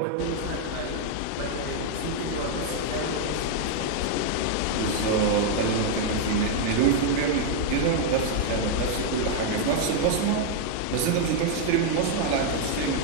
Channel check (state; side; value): different; both; correlation 0.00